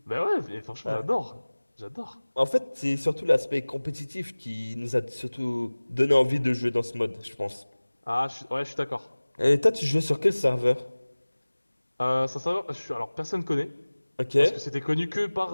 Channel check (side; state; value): both; inverted; correlation -1.00